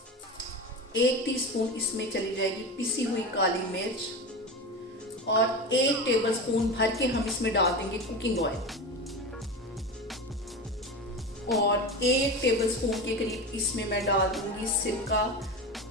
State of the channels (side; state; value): both; normal; correlation 0.25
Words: 1 टीस्पून इसमें चली जाएगी पिसी हुई काली मिर्च और 1 टेबलस्पून भर के हम इसमें डाल देंगे कुकिंग ऑयल और 1 टेबलस्पून के करीब इसमें मैं डाल दूंगी सिरका